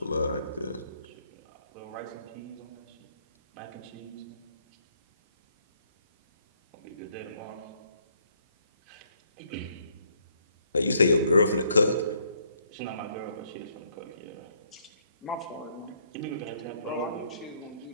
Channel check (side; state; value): both; inverted; correlation -0.69